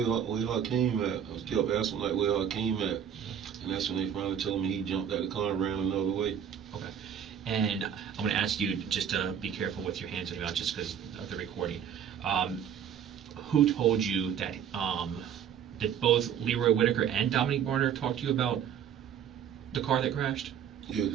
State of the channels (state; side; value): quieter; left; 8.6 dB